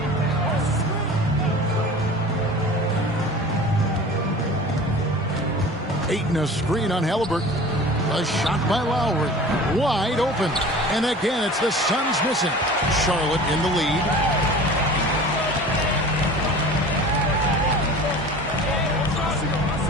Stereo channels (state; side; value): normal; both; correlation 0.40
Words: Ayton a screen on Halliburton. A shot by Lowry. Wide open. And again, it's the Suns missing. Charlotte in the lead.